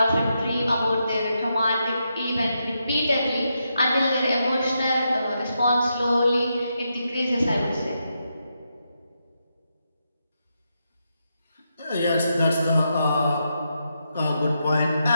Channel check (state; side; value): inverted; both; correlation -0.84